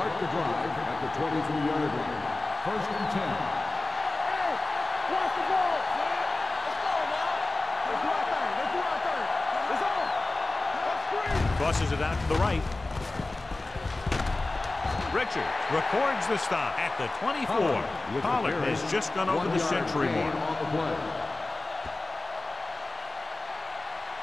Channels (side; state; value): right; quieter; 3.1 dB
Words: the drive at the 23-yard line. 1st and 10. Hey, watch the ball. Let's go now. Let's do our thing. Let's do our thing. It's on. Let's screen. Crosses it out to the right. Richards records the stop at the 24. Pollard has just gone over the century mark. On the play.